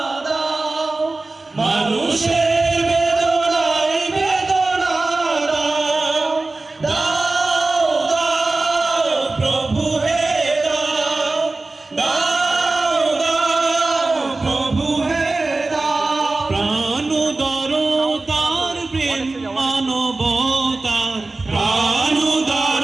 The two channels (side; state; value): left; quieter; 3.3 dB